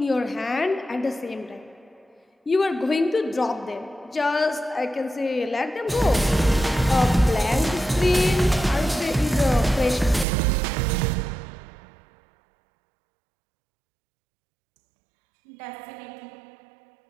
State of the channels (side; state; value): left; drops out; at 10.2 s